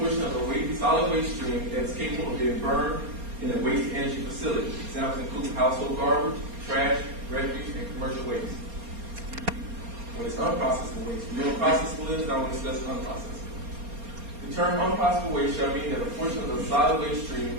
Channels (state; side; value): late; left; 4.3 ms